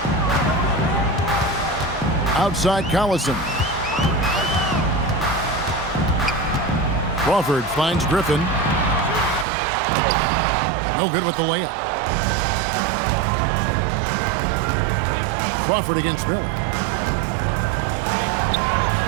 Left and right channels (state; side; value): drops out; left; at 9.5 s